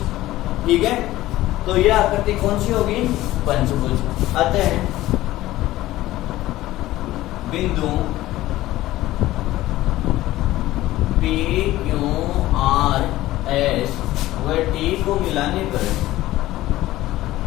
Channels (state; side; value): quieter; right; 16.1 dB